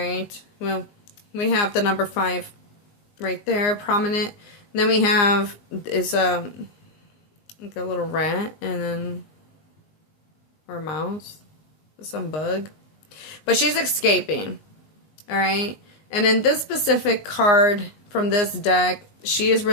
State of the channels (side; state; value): right; late; 19 ms